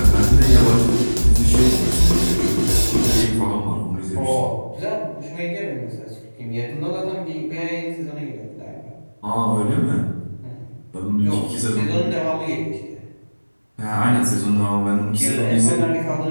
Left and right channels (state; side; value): inverted; both; correlation -1.00